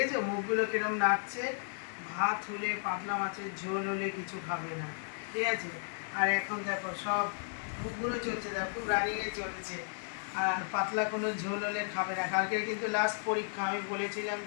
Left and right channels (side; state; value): right; silent; digital silence